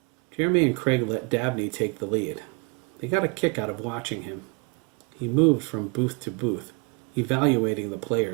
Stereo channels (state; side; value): quieter; left; 31.5 dB